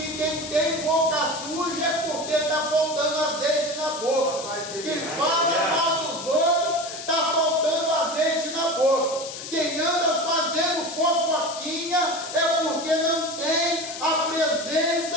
quem tem boca suja é porque está faltando azeite na boca. Quem fala mal dos outros está faltando azeite na boca. Quem anda fazendo fofoquinha é porque não tem a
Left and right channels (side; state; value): left; noise; hiss, 10 dB below the sound